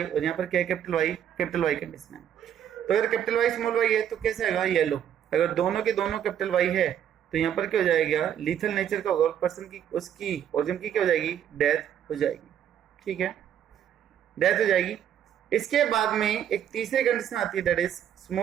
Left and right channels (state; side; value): quieter; left; 9.8 dB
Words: और यहां पर क्या है, कैपिटल वाई कंडीशन है। तो अगर कैपिटल वाई स्मॉल वाई है तो कैसे आएगा, येलो। अगर दोनों के दोनों कैपिटल वाई है तो यहाँ पर क्या हो जाएगा, लीथल नेचर का होगा, पर्सन की उसकी ऑर्गन की क्या हो जाएगी, डेथ हो जाएगी, ठीक है, डेथ हो जाएगी। इसके बाद में एक तीसरी कंडीशन आती है, that is